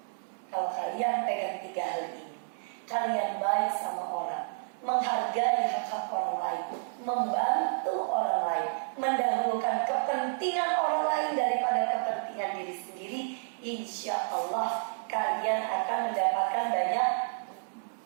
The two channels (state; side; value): silent; left; digital silence